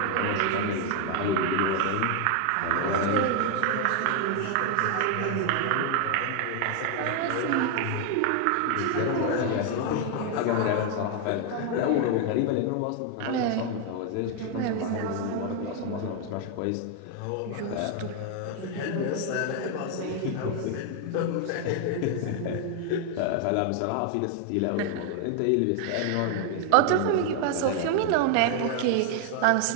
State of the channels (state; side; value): different; both; correlation 0.00